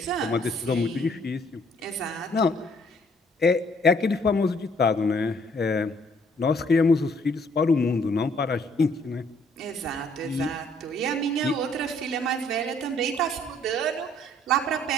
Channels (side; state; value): both; normal; correlation 0.63